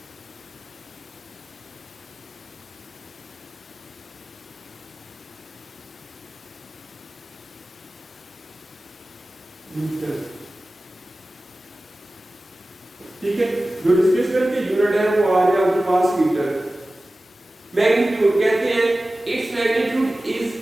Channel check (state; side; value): normal; both; correlation 0.96